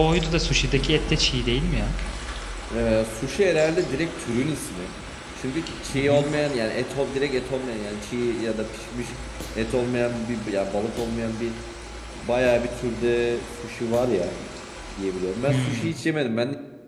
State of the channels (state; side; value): identical; both; correlation 1.00